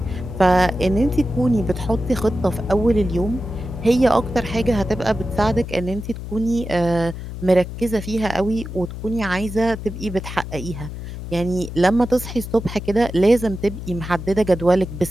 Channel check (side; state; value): left; noise; hum, 9 dB below the sound